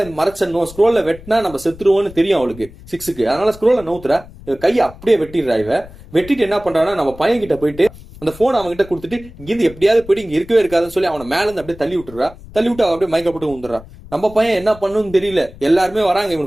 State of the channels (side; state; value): left; noise; rumble, 18 dB below the sound